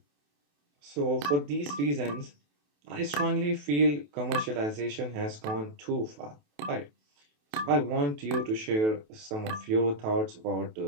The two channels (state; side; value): late; left; 28 ms